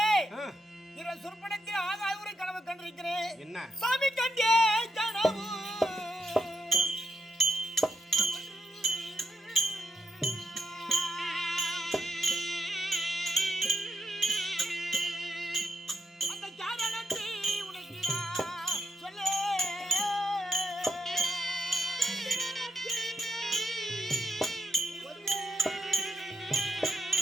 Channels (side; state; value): both; normal; correlation 0.80